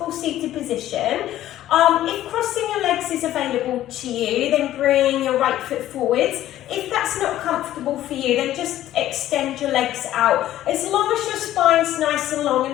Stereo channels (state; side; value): quieter; right; 13.3 dB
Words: seated position. If crossing your legs is available to you, then bring your right foot forwards. If that's not comfortable for you, then just extend your legs out. As long as your spine's nice and long